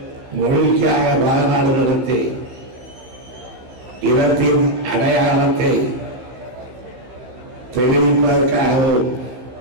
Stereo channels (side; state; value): left; late; 16 ms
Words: மொழிக்காக மாநாடு நடத்தி இனத்தின் அடையாளத்தை தெரிவிப்பதற்காகவும்